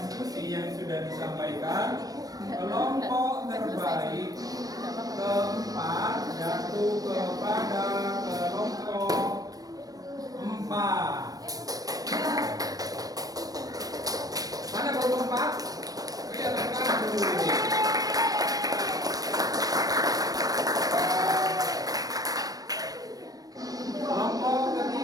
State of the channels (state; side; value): late; left; 0.18 ms